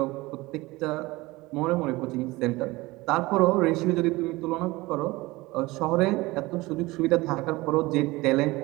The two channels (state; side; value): quieter; left; 21.1 dB